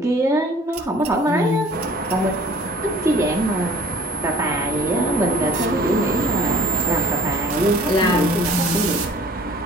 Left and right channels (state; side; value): normal; both; correlation 0.51